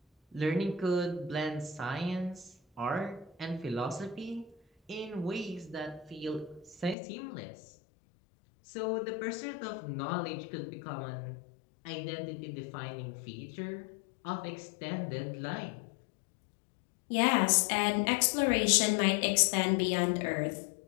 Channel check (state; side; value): drops out; right; at 7.0 s